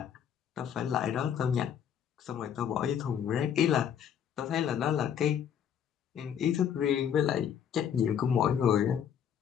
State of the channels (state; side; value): quieter; right; 8.6 dB